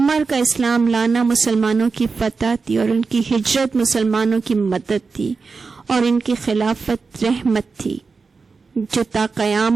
کا اسلام لانا مسلمانوں کی فتح تھی اور ان کی ہجرت مسلمانوں کی مدد تھی، اور ان کی خلافت رحمت تھی جو تا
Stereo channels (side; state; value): left; quieter; 4.6 dB